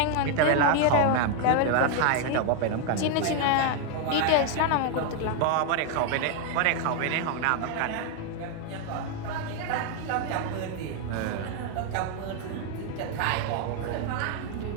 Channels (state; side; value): different; both; correlation 0.01